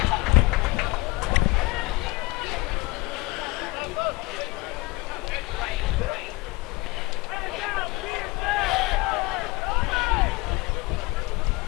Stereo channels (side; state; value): right; quieter; 23.6 dB